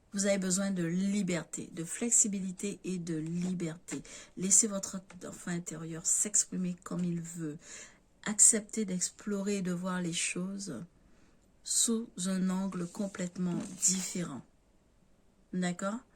Vous avez besoin de liberté, de flexibilité et de liberté. Laissez votre enfant intérieur s'exprimer comme il veut. Acceptez d'explorer et de voir les choses sous un angle complètement différent. D'accord?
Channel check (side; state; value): both; identical; correlation 1.00